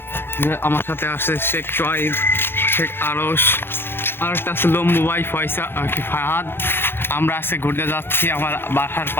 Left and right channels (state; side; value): late; right; 0.11 ms